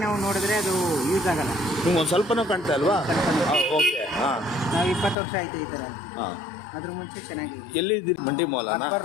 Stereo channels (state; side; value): drops out; right; at 5.2 s